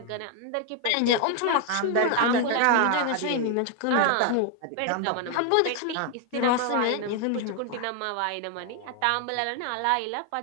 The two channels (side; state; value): both; different; correlation 0.00